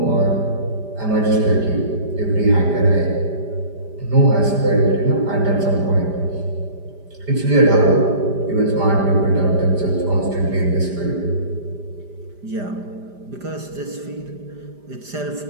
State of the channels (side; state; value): left; late; 5.0 ms